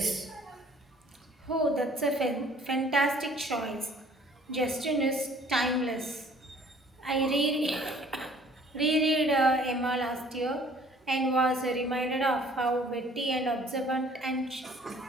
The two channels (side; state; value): both; normal; correlation 0.55